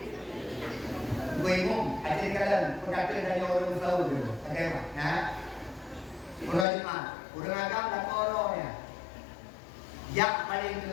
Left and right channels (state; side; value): drops out; right; at 6.7 s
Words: Gue umum, ajar kalian perkataan dari orang selalu dulu. Bagaimana? Nah, urang agam dan orangnya. Yang paling